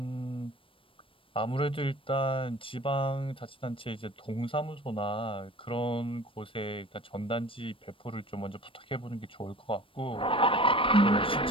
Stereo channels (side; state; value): right; late; 0.25 ms